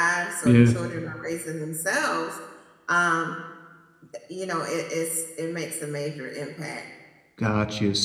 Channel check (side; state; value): both; identical; correlation 1.00